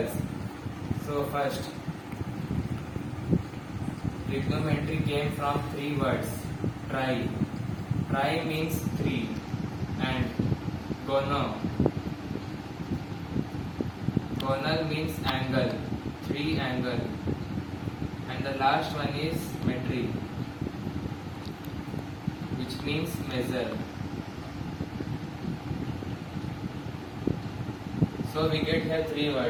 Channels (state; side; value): identical; both; correlation 1.00